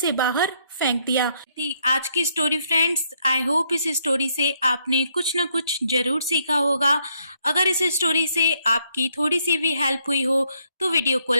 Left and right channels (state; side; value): inverted; both; correlation -0.72